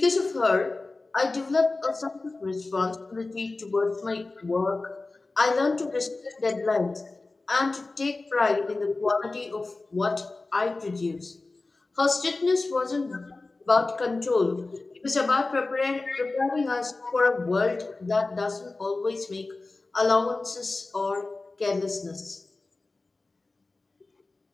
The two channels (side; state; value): right; quieter; 3.4 dB